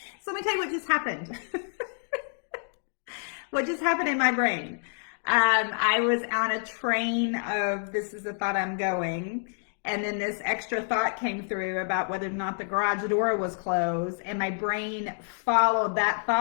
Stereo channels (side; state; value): right; silent; digital silence